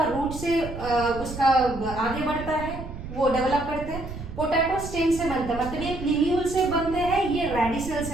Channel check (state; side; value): noise; right; rumble, 10 dB below the sound